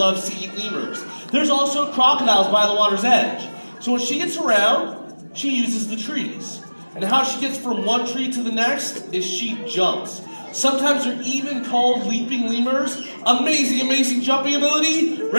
to eat lemurs. There's also crocodiles by the water's edge. So when she gets around, she uses the trees. And how she gets from one tree to the next is she jumps. Sometimes they're even called leaping lemurs. Amazing, amazing jumping ability.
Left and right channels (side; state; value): both; inverted; correlation -1.00